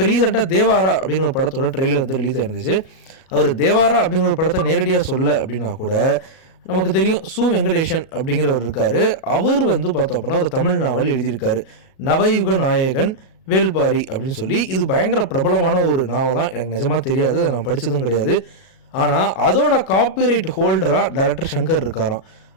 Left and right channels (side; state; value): right; late; 37 ms